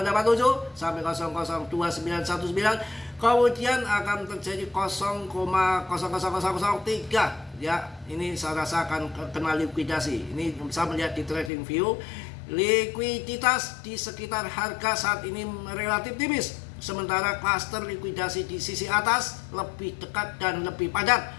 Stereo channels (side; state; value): right; drops out; at 11.5 s